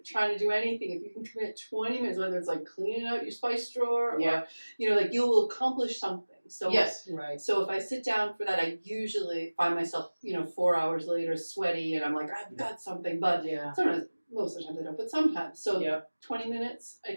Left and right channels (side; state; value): both; inverted; correlation -1.00